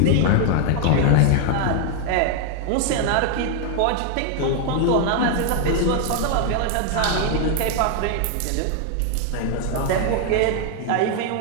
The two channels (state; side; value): different; both; correlation 0.00